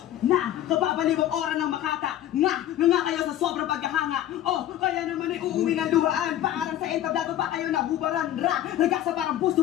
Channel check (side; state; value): right; quieter; 12.4 dB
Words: Na, kababalibang ora ng makata. Nga kayo sa sobrang paghahanga. Oh, kaya naman ay uuwi ng luhaan. Paarang sa entablado pa kayo nabubaran. Ragasa parang